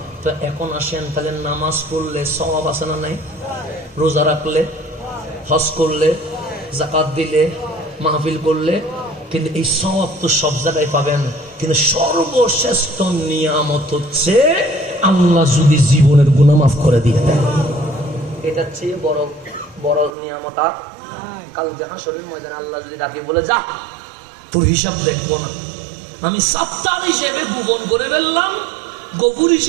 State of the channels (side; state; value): left; drops out; at 20.2 s